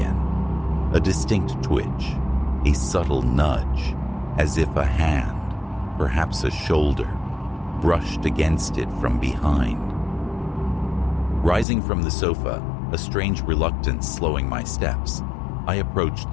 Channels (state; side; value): drops out; right; at 11.7 s